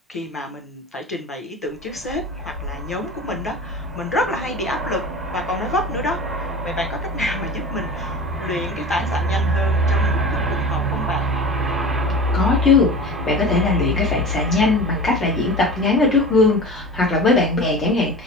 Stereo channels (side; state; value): both; normal; correlation 0.34